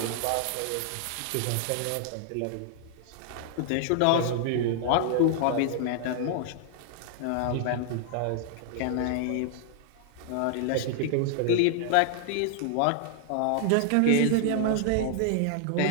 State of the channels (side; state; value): both; different; correlation 0.00